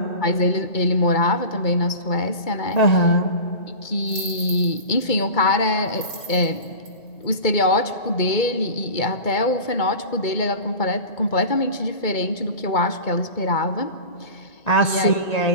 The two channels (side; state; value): right; late; 2.2 ms